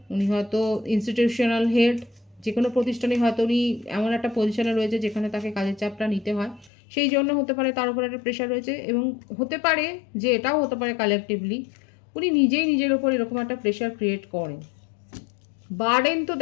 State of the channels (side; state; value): right; drops out; at 6.7 s